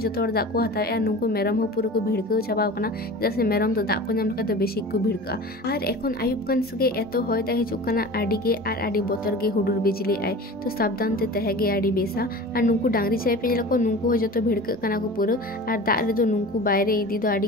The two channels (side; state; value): both; normal; correlation 0.36